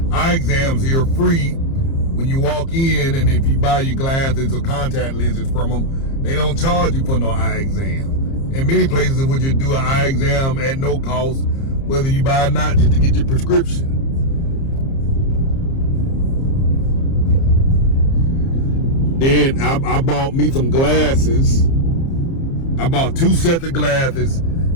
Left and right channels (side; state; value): right; late; 30 ms